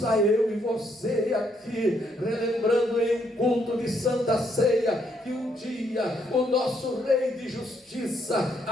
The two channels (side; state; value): both; normal; correlation 0.73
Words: eu e você aqui, relembrando em culto de Santa Ceia, que um dia o nosso Rei de Justiça,